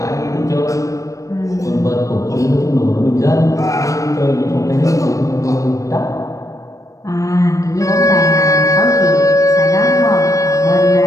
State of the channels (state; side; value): late; right; 0.16 ms